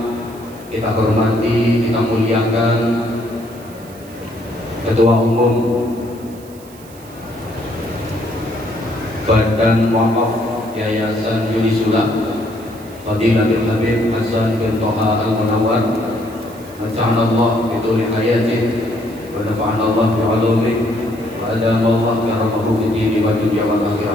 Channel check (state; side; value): noise; right; hiss, 23 dB below the sound